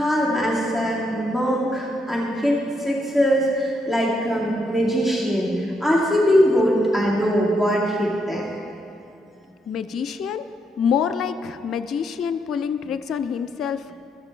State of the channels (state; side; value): normal; both; correlation 0.78